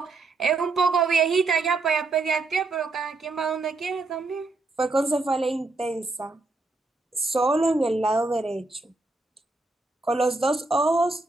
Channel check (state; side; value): quieter; left; 3.4 dB